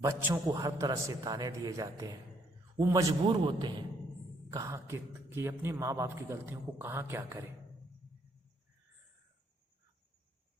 को हर तरह से ताने दिए जाते हैं, वो मजबूर होते हैं कहाँ कि अपने माँ बाप की गलतियों को कहाँ क्या करें।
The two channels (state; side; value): normal; both; correlation 0.69